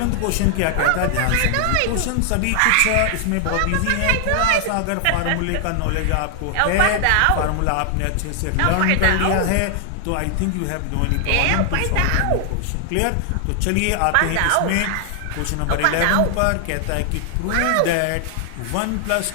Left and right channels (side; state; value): both; different; correlation 0.00